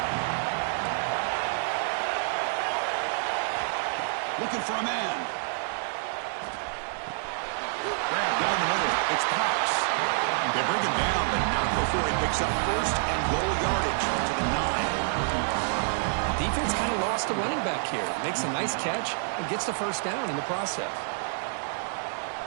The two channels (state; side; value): silent; left; digital silence